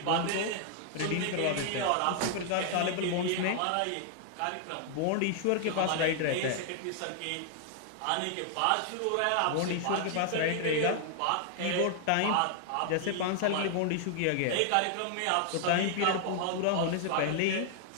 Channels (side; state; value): both; different; correlation 0.00